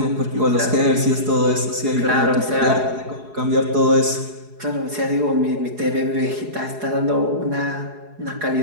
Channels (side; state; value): left; late; 4.8 ms